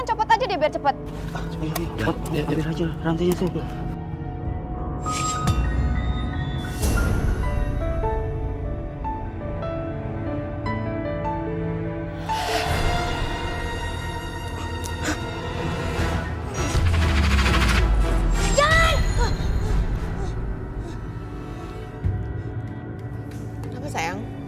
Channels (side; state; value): both; identical; correlation 1.00